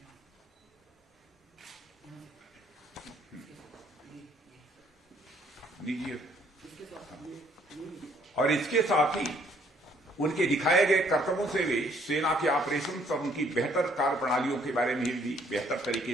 और इसके साथ ही उनके दिखाए गए कर्तव्यों से वे सेना के ऑपरेशन और उनकी बेहतर कार्य प्रणालियों के बारे में भी बेहतर तरीके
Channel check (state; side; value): normal; both; correlation 0.64